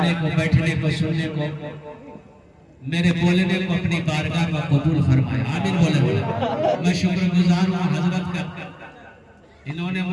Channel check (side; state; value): both; identical; correlation 1.00